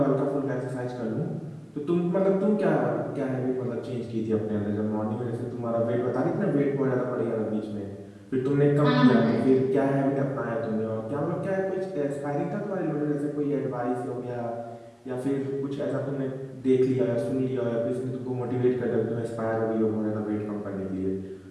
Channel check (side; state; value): both; identical; correlation 1.00